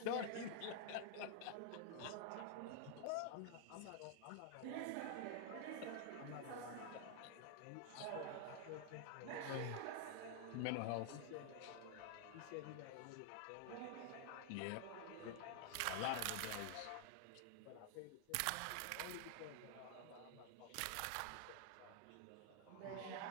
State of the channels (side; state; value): both; different; correlation 0.00